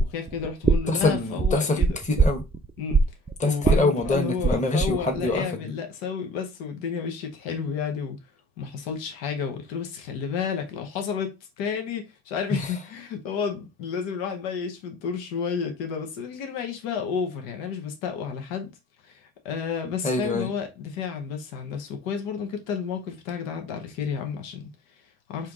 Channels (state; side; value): normal; both; correlation 0.46